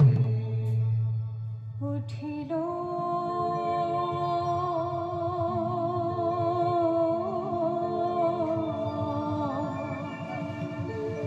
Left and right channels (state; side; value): identical; both; correlation 1.00